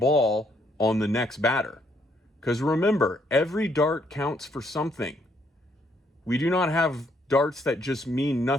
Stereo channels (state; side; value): normal; both; correlation 0.71